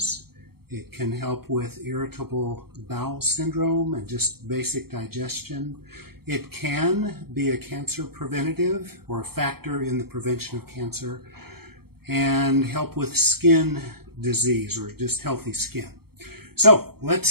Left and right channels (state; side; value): late; left; 0.95 ms